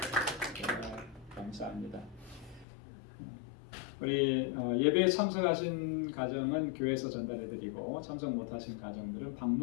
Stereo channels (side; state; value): right; drops out; at 2.7 s